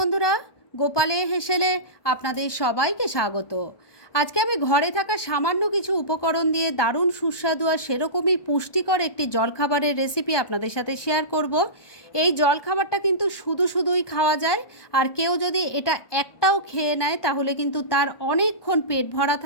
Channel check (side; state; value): right; late; 1.2 ms